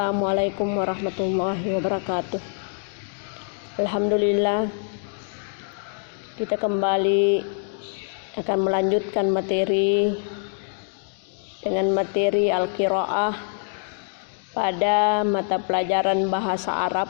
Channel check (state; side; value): silent; right; digital silence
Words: warahmatullahi wabarakatuh. Alhamdulillah, kita kembali akan melanjutkan materi dengan materi Al-Qiraah pada mata pelajaran bahasa